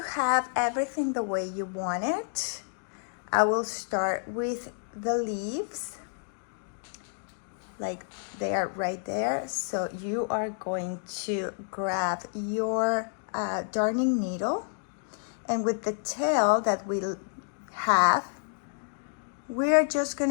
have everything the way you want it, I will start with the leaves, like they are right there. So you are going to grab your darning needle, and with the tail that we have, we're just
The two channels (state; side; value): silent; right; digital silence